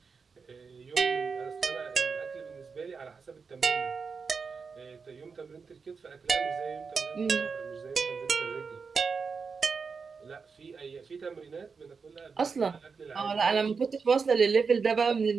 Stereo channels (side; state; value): left; quieter; 5.2 dB